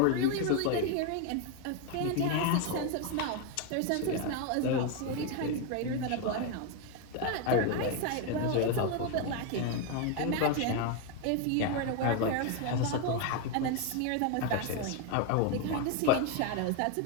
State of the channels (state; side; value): different; both; correlation 0.01